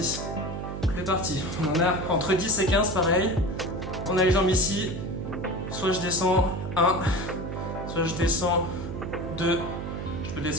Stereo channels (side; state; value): right; noise; hum, 6 dB below the sound